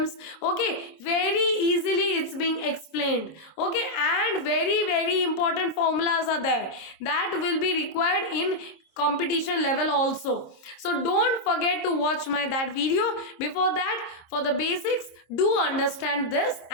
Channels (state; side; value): late; right; 26 ms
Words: Okay, very easily it's being explained. Okay, and very important formulas are there that will be required in competition level also. So don't forget to watch that video. Before that, for the basics, do understand this